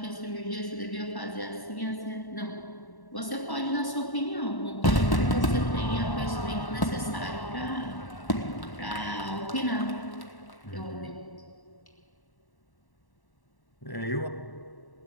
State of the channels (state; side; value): late; right; 1.1 ms